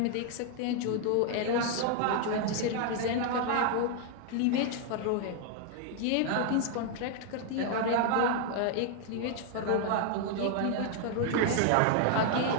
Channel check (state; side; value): different; both; correlation 0.00